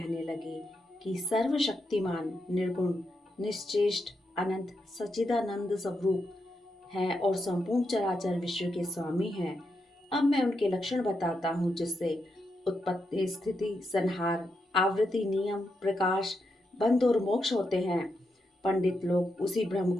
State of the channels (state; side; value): normal; both; correlation 0.84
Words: लगे कि सर्वशक्तिमान, निर्गुण, निश्चेष्ट, अनंत, सच्चिदानंद स्वरूप हैं और संपूर्ण चराचर विश्व के स्वामी हैं। अब मैं उनके लक्षण बताता हूँ जिससे उत्पत्ति, स्थिति, संहार, आवृत्ति, नियम, प्रकाश, बंध और मोक्ष होते हैं। पंडित लोग उसी ब्रह्म